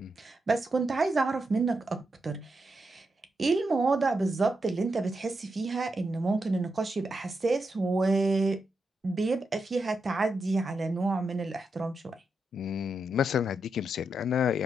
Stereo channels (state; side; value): normal; both; correlation 0.85